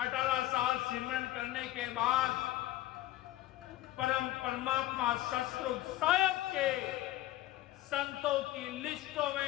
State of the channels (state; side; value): quieter; right; 15.2 dB